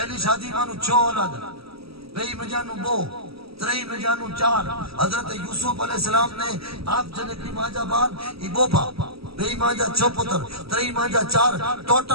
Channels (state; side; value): late; left; 0.76 ms